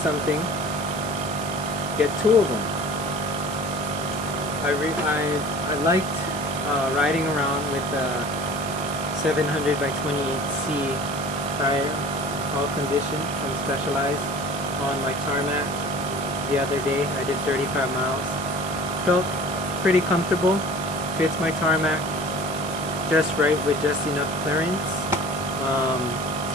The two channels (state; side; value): noise; right; hiss, 12 dB below the sound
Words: get two of them. I liked riding around with the 700 by 28C tire, all condition from Specialized, on my tarmac the other day. I did 35 miles. Felt pretty comfortable. Fits my tarmac just right with just enough clearance.